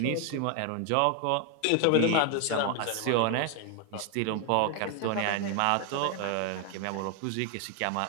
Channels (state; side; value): different; both; correlation 0.01